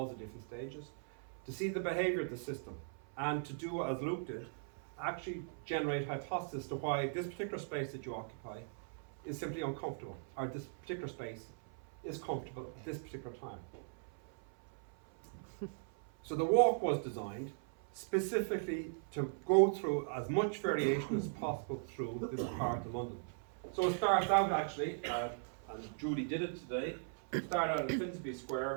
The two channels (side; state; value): left; silent; 52 dB below the other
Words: at different stages, to see the behavior of the system, and to do as Luke did, actually generate hypotheses to why this particular space that you occupy is simply uncomfortable, or this particular space is comfortable at this particular time. So the walk was designed specifically to go through as much variation as possible through this part of London. So it starts out actually, and Judy did it today, we start out at Finsbury